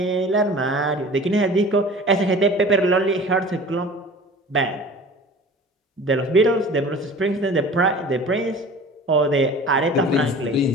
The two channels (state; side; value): normal; both; correlation 0.42